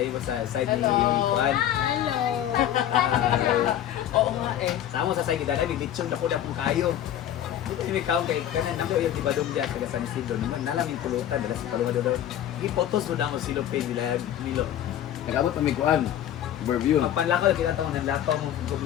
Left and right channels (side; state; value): right; quieter; 11.2 dB